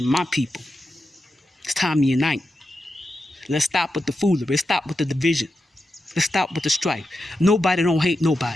my people. It's time to unite. Let's stop with the foolery. Let's stop with the division. Let's stop with the strife. Nobody don't hate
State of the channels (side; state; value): both; normal; correlation 0.89